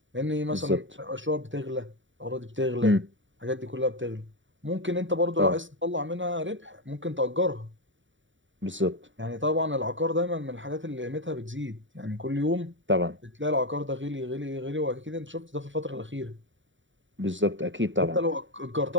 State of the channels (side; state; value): left; late; 0.55 ms